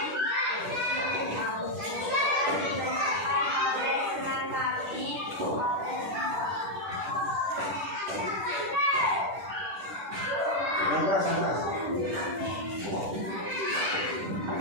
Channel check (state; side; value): late; left; 10 ms